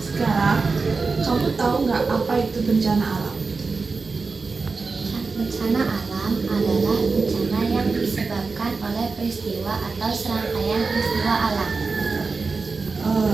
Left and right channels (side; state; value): left; quieter; 4.3 dB